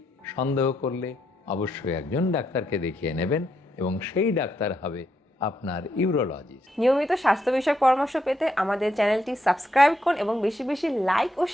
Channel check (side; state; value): both; normal; correlation 0.79